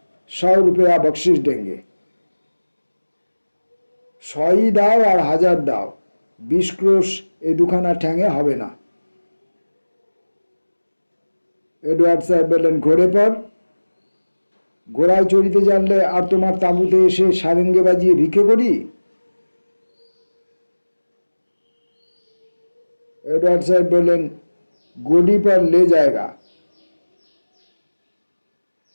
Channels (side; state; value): both; inverted; correlation -1.00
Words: 100 रुपया बख्शिश देंगे। 100 ही दाओ और 1000 दाओ, 20 क्रोश ए दुखाना ठेंगे हबे ना। एडवार्ड साहेब बोलें, घोड़े पर? घोड़ाय चढ़िते जानले और तुम्हार ताबूते एसे सारेंगे बाजिए भिखे करी? एडवर्ड साहब बोलें, गोडी पर ले जाएगा।